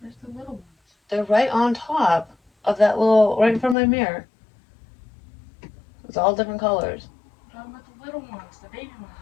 Where's the little ones? They're right on top of that little, right in front of my mirror. It's all different colors. I'm talking about the little ones, the baby ones.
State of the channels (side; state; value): right; drops out; at 3.8 s